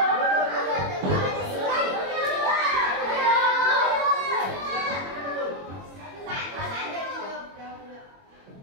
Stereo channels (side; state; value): left; late; 21 ms